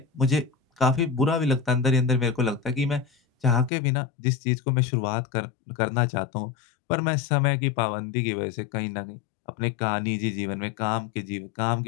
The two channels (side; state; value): right; drops out; at 3.7 s